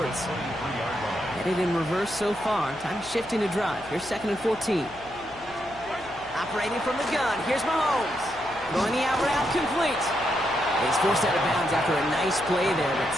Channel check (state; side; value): noise; left; hum, 22 dB below the sound